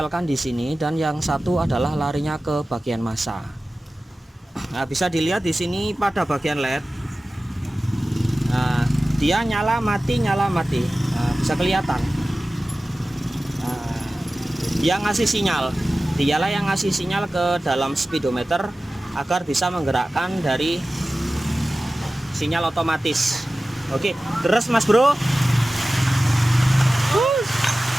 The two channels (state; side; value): normal; both; correlation 0.96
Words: di sini dan yang satu adalah larinya ke bagian massa. Nah, bisa dilihat di sini pada bagian LED. Nah, dia nyala mati. Nah, bisa kelihatan. Nah, dia ngasih sinyal. Dialah yang ngasih sinyal ke dalam speedometer agar bisa menggerakkan dari sinyal otomatis. Oke, terus Mas Bro.